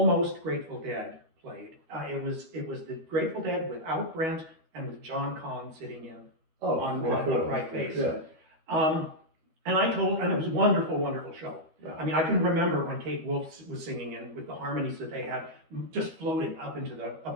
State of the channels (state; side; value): late; left; 12 ms